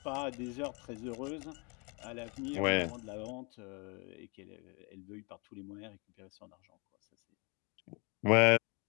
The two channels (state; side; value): quieter; right; 32.3 dB